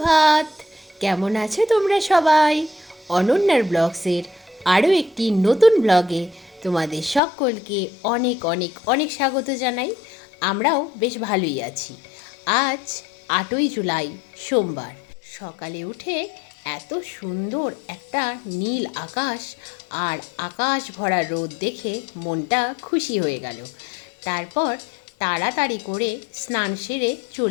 কেমন আছো তোমরা সবাই? অনন্যার ব্লগসের আরও একটি নতুন ব্লগে তোমাদের সকলকে অনেক অনেক অনেক স্বাগত জানাই। আমরাও বেশ ভালোই আছি। আজ 8ই জুলাই সোমবার। সকালে উঠে এত সুন্দর একটা নীল আকাশ আর আকাশ ভরা রোদ দেখে মনটা খুশি হয়ে গেল। তারপর তাড়াতাড়ি করে স্নান সেরে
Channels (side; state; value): right; drops out; at 7.2 s